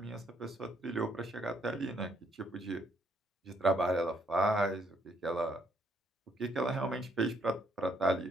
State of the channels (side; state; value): both; normal; correlation 0.70